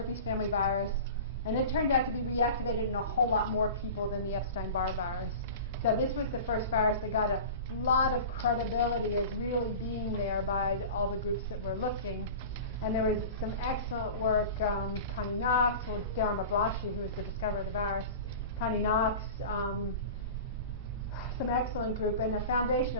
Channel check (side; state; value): both; inverted; correlation -0.35